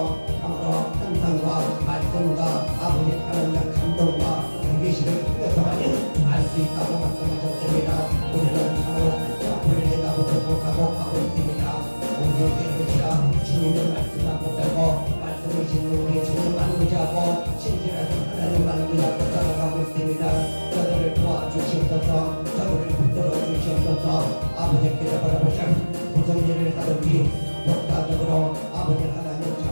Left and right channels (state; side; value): inverted; both; correlation -1.00